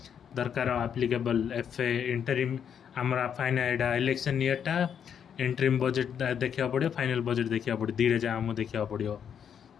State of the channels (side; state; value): right; quieter; 8.1 dB